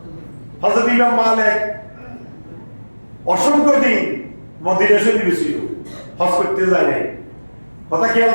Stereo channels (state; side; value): inverted; both; correlation -1.00